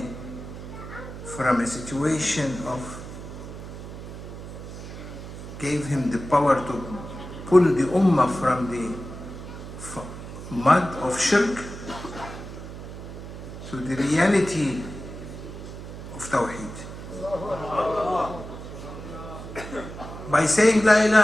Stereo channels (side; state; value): right; noise; hum, 11 dB below the sound